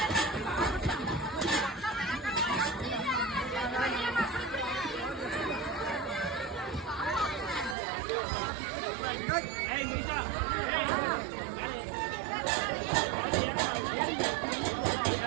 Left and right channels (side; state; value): left; drops out; at 7.8 s